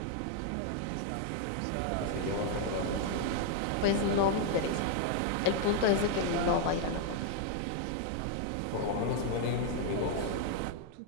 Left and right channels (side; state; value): both; different; correlation 0.00